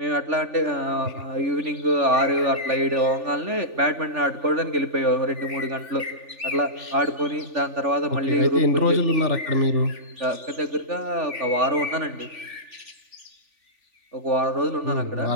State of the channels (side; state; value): left; late; 3.4 ms